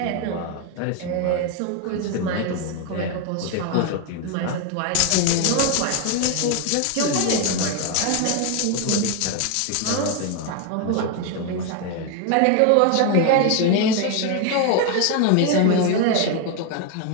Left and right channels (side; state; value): both; different; correlation 0.01